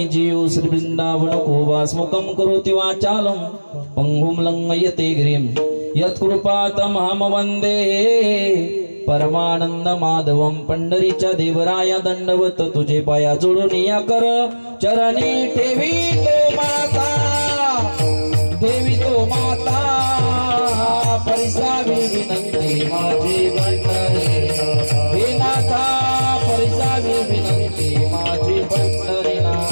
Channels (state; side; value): inverted; both; correlation -1.00